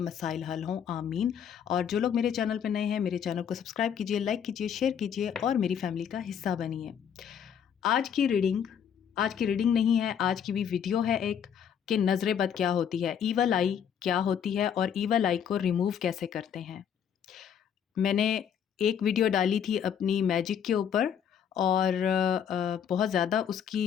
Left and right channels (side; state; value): right; quieter; 8.3 dB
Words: मसाइल हल हों, आमीन। और जो लोग मेरे चैनल पे नए हैं, मेरे चैनल को सब्सक्राइब कीजिए, लाइक कीजिए, शेयर कीजिए और मेरी फैमिली का हिस्सा बनिए। आज की रीडिंग नहीं है, आज की भी वीडियो है एक, कि नज़र बद क्या होती है, ईवल आई क्या होती है और ईवल आई को रिमूव कैसे करते हैं। मैंने एक वीडियो डाली थी अपनी मैजिक के ऊपर और बहुत ज़्यादा